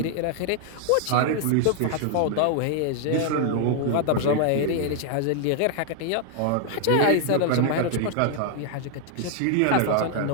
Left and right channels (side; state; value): both; different; correlation 0.00